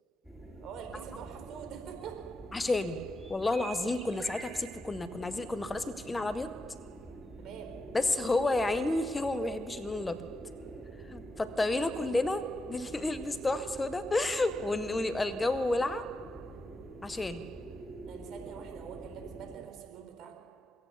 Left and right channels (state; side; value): normal; both; correlation 0.87